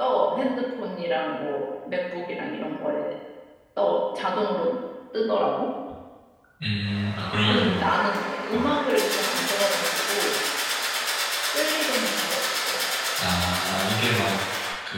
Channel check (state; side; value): identical; both; correlation 1.00